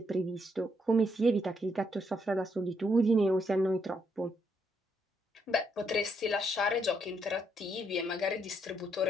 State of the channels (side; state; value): both; normal; correlation 0.76